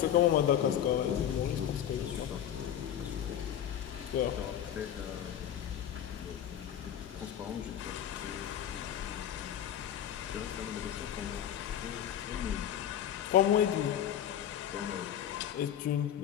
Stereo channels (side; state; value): right; quieter; 10.2 dB